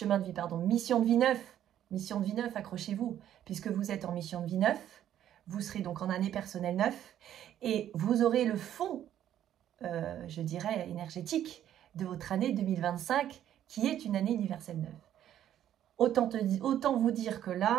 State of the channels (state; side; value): quieter; left; 11.1 dB